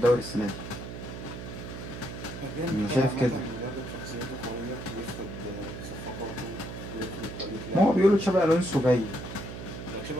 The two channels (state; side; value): noise; right; hum, 9 dB below the sound